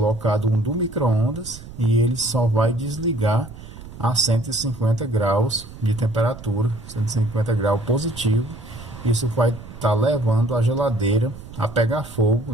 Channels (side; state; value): right; noise; rumble, 15 dB below the sound